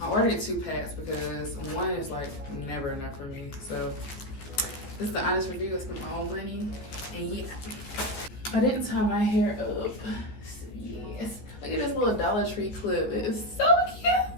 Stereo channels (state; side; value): late; right; 14 ms